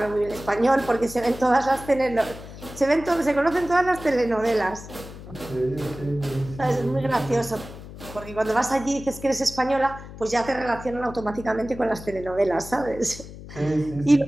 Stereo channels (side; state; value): left; noise; hum, 14 dB below the sound